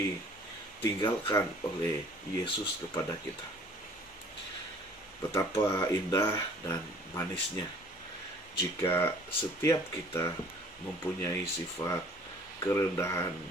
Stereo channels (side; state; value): both; normal; correlation 0.53